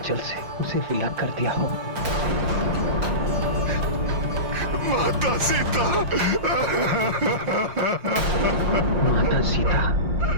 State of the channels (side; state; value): left; late; 5.6 ms